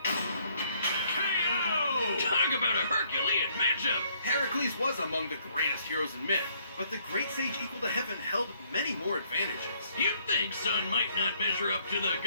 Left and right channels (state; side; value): inverted; both; correlation -0.67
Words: KO! Talk about a Herculean matchup! Heracles was among the greatest heroes in myth, but the great sage equal to heaven held many more advantages. You'd think Sun might not measure up to the